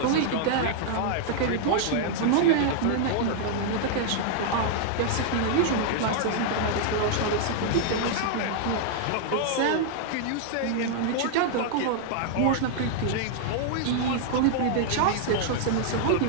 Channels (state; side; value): different; both; correlation -0.01